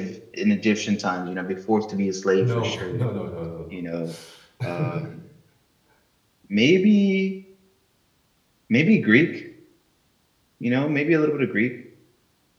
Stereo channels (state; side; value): identical; both; correlation 1.00